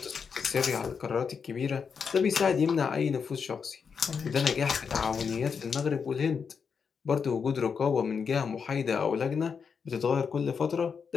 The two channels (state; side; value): quieter; right; 6.1 dB